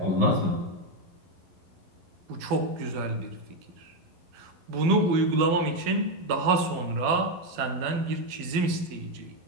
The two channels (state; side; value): late; left; 12 ms